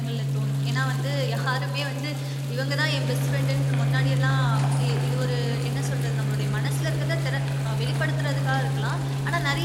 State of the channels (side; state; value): both; identical; correlation 1.00